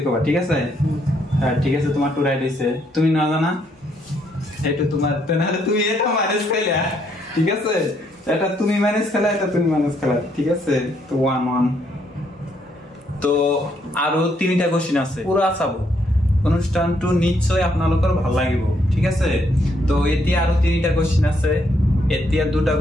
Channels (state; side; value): normal; both; correlation 0.73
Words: কবা ঠিক আছে হ্যাঁ ঠিক আছে তোমার টু রাইট হইছে তুমি না জানা এটা তোমার তাহলে তুমি এটা মাইনাস খেলা ঠিক আছে এটা তুমি মাইনাস খেলা এটা তুমি মাইনাস খেলা ঠিক আছে তো 1 তো আরো তিনটা কোশ্চেন আছে পুরা চাবো অনুষ্ঠানটো নিশ্চয় আপোনালোকৰ ভাল লাগিব ঠিক আছে তো এতিয়া আৰু তিনটা কোশ্চেন আছে এতিয়া দুটা